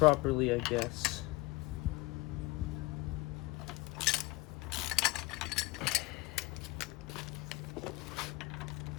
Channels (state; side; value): quieter; right; 20.9 dB